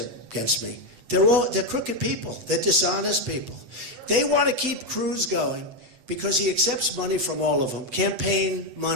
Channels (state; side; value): late; left; 8.0 ms